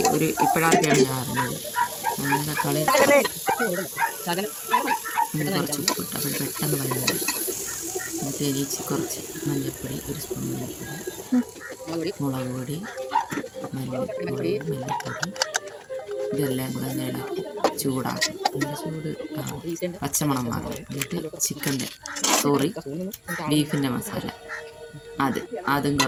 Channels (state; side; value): identical; both; correlation 1.00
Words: ഇപ്പോഴാണ് ഞാൻ അറിഞ്ഞത്. തക്കാളി കുറച്ച് ഉപ്പിട്ട് അപ്പോൾ പെട്ടെന്ന് വഴങ്ങും. എന്നിട്ട് കുറച്ച് മഞ്ഞൾപ്പൊടി, ഒരു സ്പൂൺ മഞ്ഞൾപ്പൊടി, മുളക് പൊടി, മല്ലിപ്പൊടി ഇതെല്ലാം കൂടെ ഇളക്കി ചൂടാക്കും. ചൂട് പച്ചമണം മാറും. എന്നിട്ട് ബീഫിൻ്റെ മസാല അതും